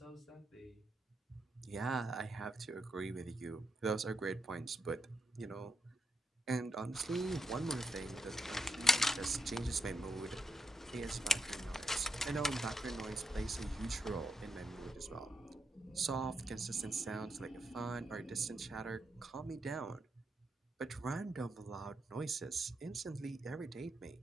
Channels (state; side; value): normal; both; correlation 0.80